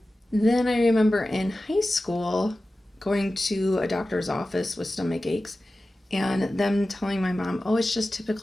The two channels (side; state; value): both; normal; correlation 0.95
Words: Then I remember in high school going to a doctor's office with stomach aches and them telling my mom, oh, it's just